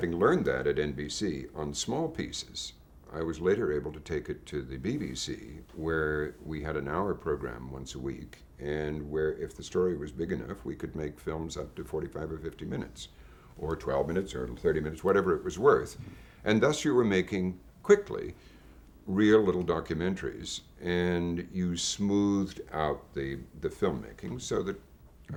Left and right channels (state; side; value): identical; both; correlation 1.00